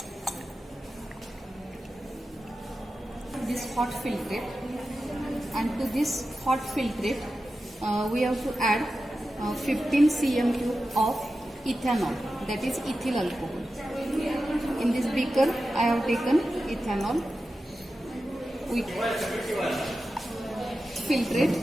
This hot filtrate, and to this hot filtrate we have to add 15 cm cube of ethanol, that is ethyl alcohol. In this beaker I have taken ethanol. We filtrate.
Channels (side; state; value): both; normal; correlation 0.92